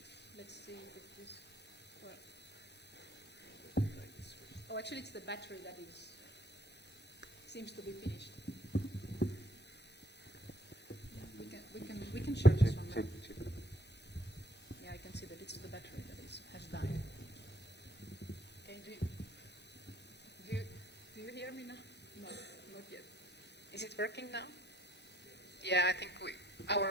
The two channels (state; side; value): normal; both; correlation 0.65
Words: Let's see if this works. Oh, actually, it's the battery that seems to be finished. We can share this one now. Yeah, I can see that it's the battery that has died. Okay, do you hear me now? No, not yet. Is it working now? Yeah, I think